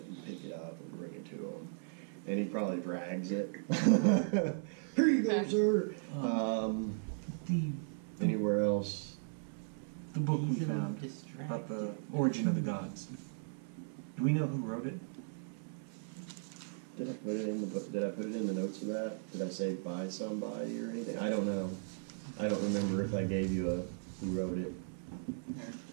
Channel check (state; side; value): silent; left; 53 dB below the other